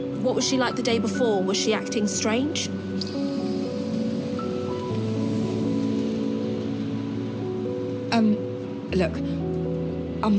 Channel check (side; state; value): both; identical; correlation 1.00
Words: was she like the day before? Was she acting strange? Look, I'm